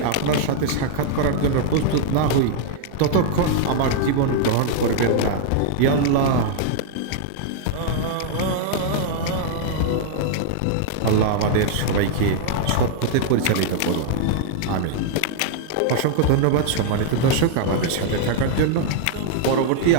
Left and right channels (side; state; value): both; different; correlation 0.00